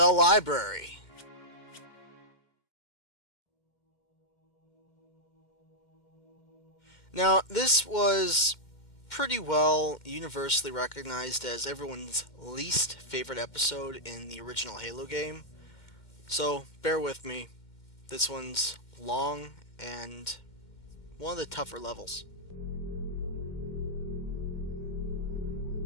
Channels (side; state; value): right; late; 2.1 ms